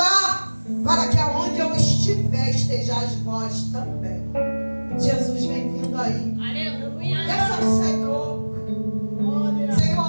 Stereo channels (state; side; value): inverted; both; correlation -1.00